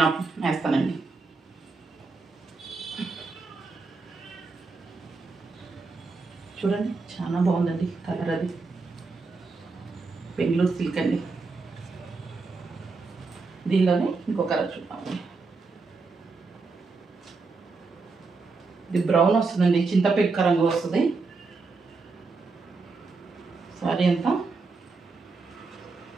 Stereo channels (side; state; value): left; quieter; 4.1 dB